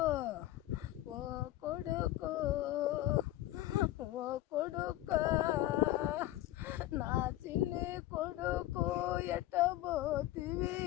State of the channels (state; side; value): quieter; right; 15.3 dB